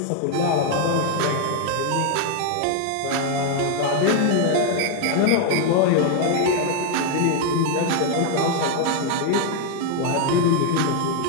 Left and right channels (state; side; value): different; both; correlation 0.00